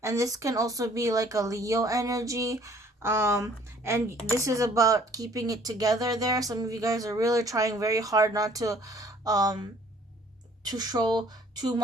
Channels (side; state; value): both; normal; correlation 0.57